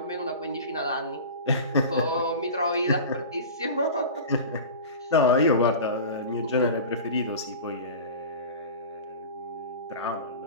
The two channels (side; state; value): both; inverted; correlation -0.33